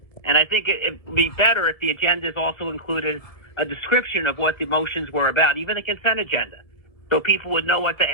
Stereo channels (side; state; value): right; late; 1.7 ms